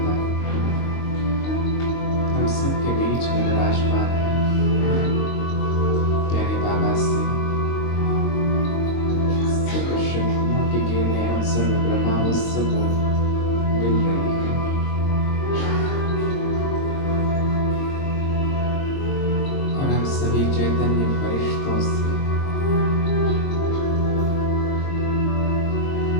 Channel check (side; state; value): right; late; 22 ms